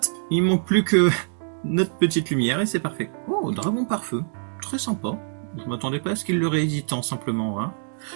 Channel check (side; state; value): left; silent; 62 dB below the other